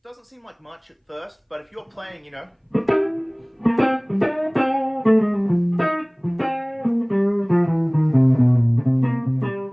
doesn't seem like much at first, but if you're playing,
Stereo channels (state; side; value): identical; both; correlation 1.00